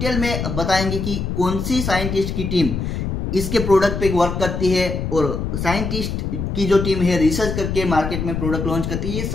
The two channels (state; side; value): noise; left; rumble, 3 dB below the sound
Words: में बताएंगे कि कौन सी साइंटिस्ट की टीम इसके प्रोडक्ट पे वर्क करती है और साइंटिस्ट की जो टीम है रिसर्च करके मार्केट में प्रोडक्ट लॉन्च करती है। ये